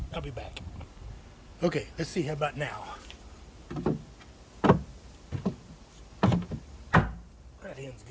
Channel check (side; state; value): both; identical; correlation 1.00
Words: I'll be back. Okay, let's see how about now. That end's